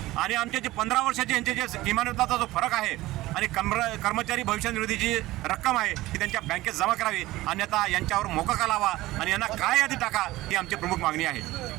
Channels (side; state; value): left; quieter; 17.7 dB